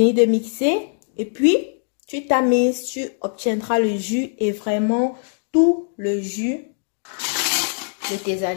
de mixer et puis tu tamises, tu obtiendras le jus et vraiment tout le jus de tes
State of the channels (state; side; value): silent; right; digital silence